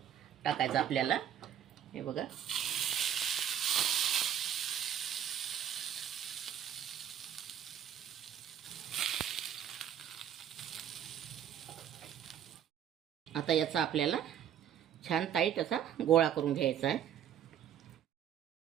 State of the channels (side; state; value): left; quieter; 9.7 dB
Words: टाकायचं आपल्याला. हे बघा. आता याचा आपल्याला छान टाईट असा गोळा करून घ्यायचा आहे.